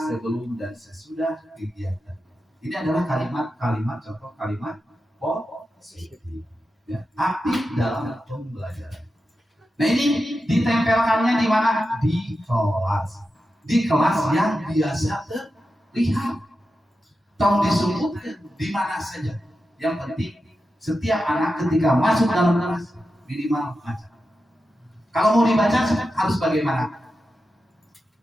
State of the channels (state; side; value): normal; both; correlation 0.91